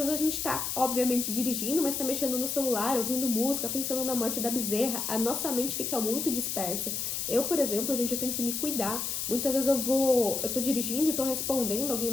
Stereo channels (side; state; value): left; noise; hiss, 2 dB below the sound